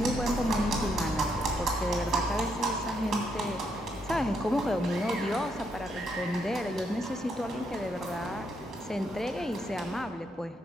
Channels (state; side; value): normal; both; correlation 0.77